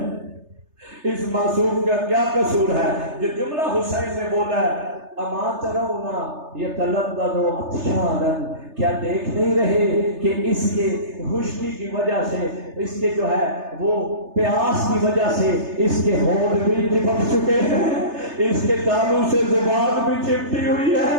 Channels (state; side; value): late; left; 3.3 ms